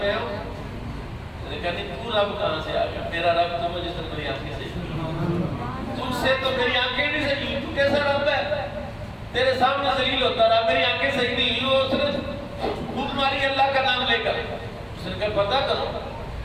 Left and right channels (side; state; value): both; identical; correlation 1.00